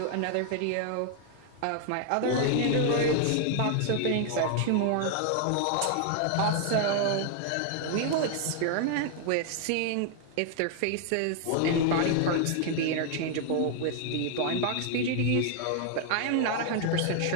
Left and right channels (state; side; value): different; both; correlation 0.00